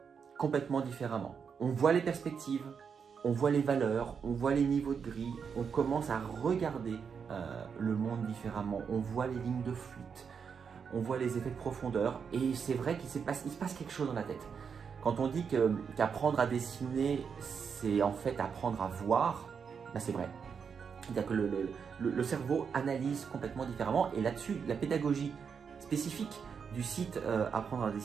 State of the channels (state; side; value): quieter; left; 6.4 dB